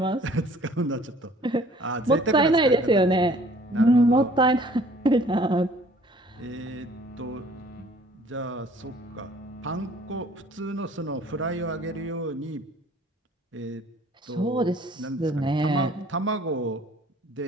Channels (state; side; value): normal; both; correlation 0.54